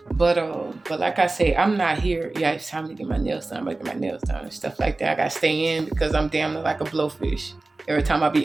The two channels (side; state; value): left; quieter; 3.2 dB